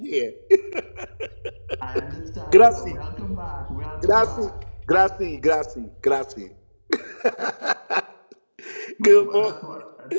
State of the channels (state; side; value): inverted; both; correlation -1.00